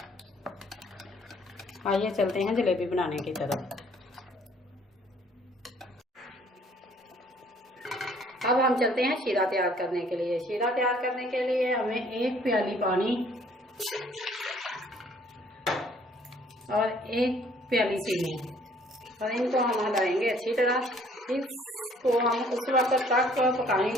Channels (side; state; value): both; normal; correlation 0.59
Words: आइए चलते हैं जलेबी बनाने की तरफ। अब हम चलते हैं शीरा तैयार करने के लिए। शीरा तैयार करने के लिए हमें 1 प्याली पानी और 1 प्याली चीनी और इनको हम हिलाएंगे अच्छी तरह। इसको हम उस वक्त तक